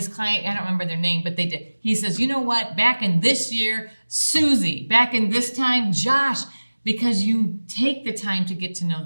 client, I don't remember their name, but they did. He says, you know what, back in this year, Susie, back in this time, Josh, because you take the time to get to know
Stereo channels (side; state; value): both; inverted; correlation -1.00